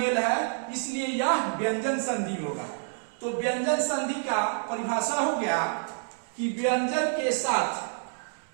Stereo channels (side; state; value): left; silent; 59 dB below the other